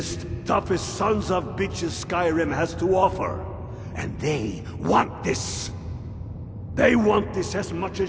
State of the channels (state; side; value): identical; both; correlation 1.00